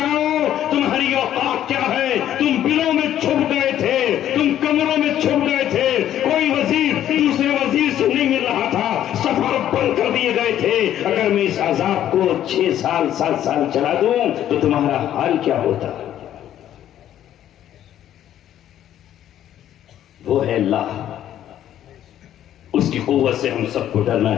تمہاری اوقات کیا ہے، تم بلوں میں چھپ گئے تھے، تم کمروں میں چھپ گئے تھے، کوئی وزیر دوسرے وزیر سے نہیں مل رہا تھا، سفر بند کر دیے گئے تھے، اگر میں اس عذاب کو 6 سال 7 سال چلا دوں تو تمہارا حال کیا ہوتا؟ وہ ہے اللہ، اس کی قوت سے ہم سب کو ڈرنا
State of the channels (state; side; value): quieter; right; 11.4 dB